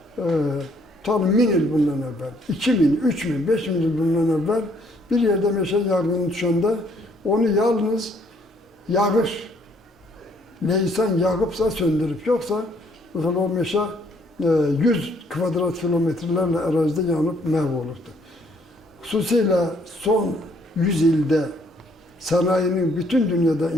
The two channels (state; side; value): normal; both; correlation 0.65